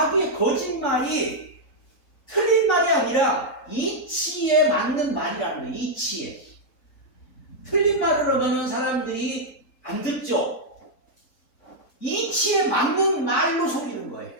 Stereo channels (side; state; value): right; late; 4.0 ms